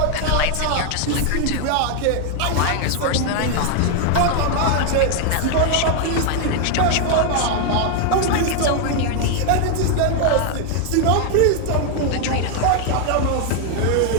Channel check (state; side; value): different; both; correlation 0.00